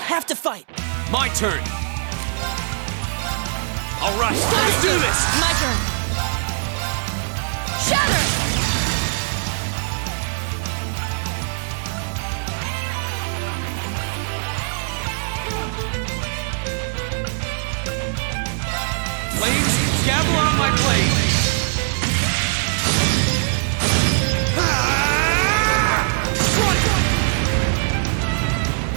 to fight! My turn! Alright, let's do this! My turn. Shatter! Flames, gather on my blade!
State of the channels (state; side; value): silent; left; 65 dB below the other